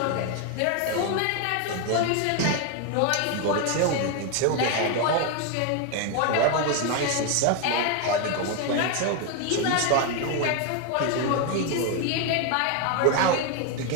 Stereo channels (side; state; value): both; different; correlation 0.01